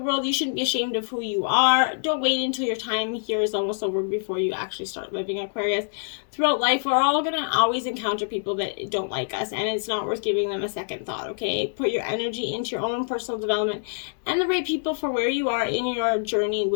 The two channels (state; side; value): silent; right; digital silence